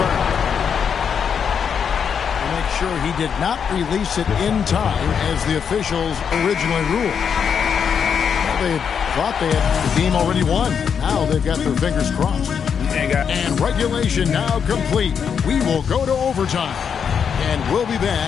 To make sure he did not release it in time as the officials originally ruled. They thought they had the game already won. Now they've got their fingers crossed. And regulation now complete. We will go to overtime. And we'll be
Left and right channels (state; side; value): quieter; right; 7.1 dB